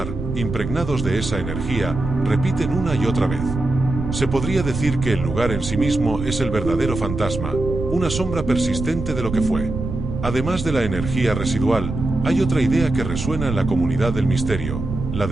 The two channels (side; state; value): right; noise; rumble, 6 dB below the sound